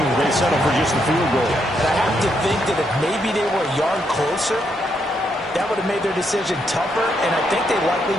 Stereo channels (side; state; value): both; normal; correlation 0.78